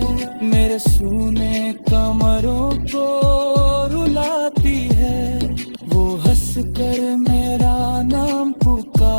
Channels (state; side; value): inverted; both; correlation -1.00